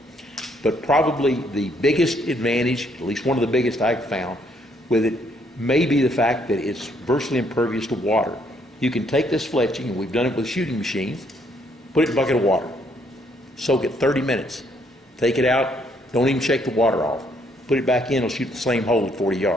But probably the biggest advantage, at least one of the biggest I've found with it, may be the fact that it's virtually impervious to water. You can take this fletching, and we've done it with shooting machines, put it in a bucket of water, soak it 30 minutes, take it out, don't even shake the water off, put it back in, it'll shoot the same hole at 40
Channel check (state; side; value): normal; both; correlation 0.69